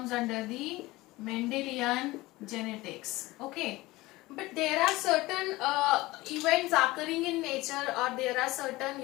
under the Mendelian genetics. Okay. But there are certain events occurring in nature, or there are certain,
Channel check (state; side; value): quieter; right; 19.8 dB